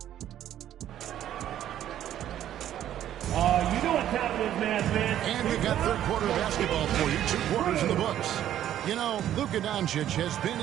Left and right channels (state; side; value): quieter; left; 11.5 dB